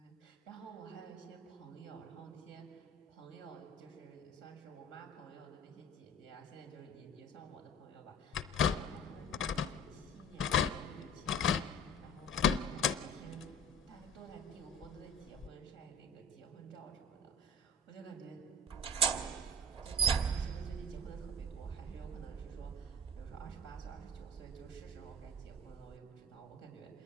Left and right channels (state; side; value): normal; both; correlation 0.38